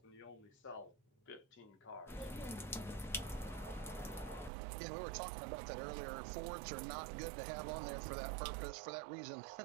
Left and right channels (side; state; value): left; drops out; at 4.5 s